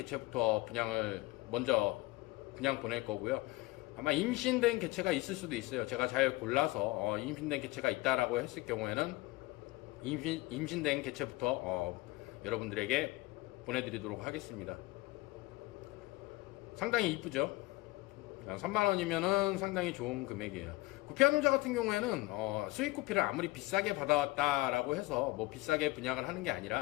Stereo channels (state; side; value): quieter; right; 20.7 dB